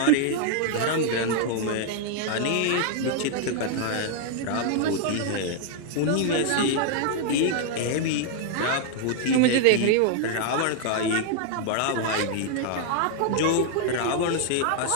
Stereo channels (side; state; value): both; different; correlation 0.00